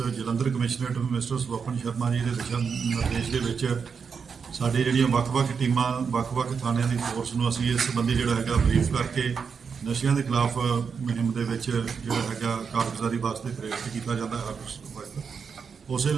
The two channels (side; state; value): left; quieter; 6.0 dB